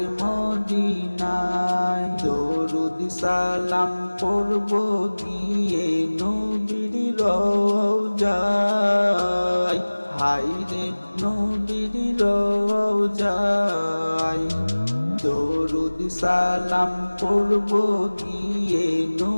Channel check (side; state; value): both; inverted; correlation -1.00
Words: মদিনায় দরুদ সালাম পড়ব গিয়ে নবীর রওজায় হায়রে নবীর রওজায় দরুদ সালাম পড়ব গিয়ে